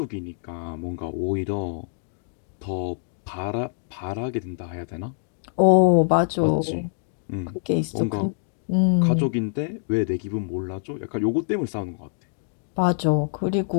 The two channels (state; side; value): silent; right; digital silence